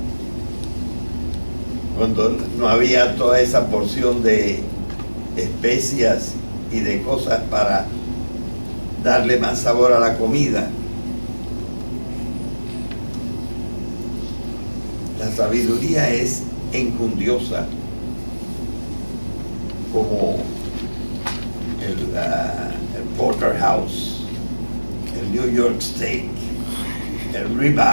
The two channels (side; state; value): both; inverted; correlation -1.00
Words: Cuando no había toda esa porción de especias y de cosas para darle más sabor a la comida. La sabiduría es enjundiosa. como el Porterhouse, el New York Steak, el